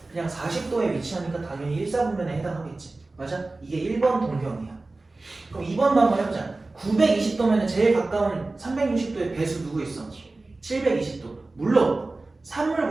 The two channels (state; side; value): quieter; left; 3.2 dB